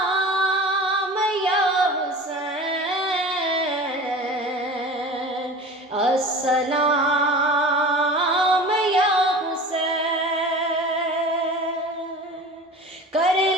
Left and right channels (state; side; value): normal; both; correlation 0.37